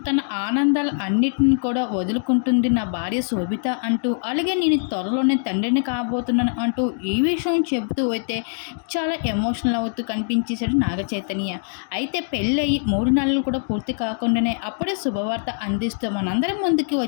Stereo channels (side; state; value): right; silent; digital silence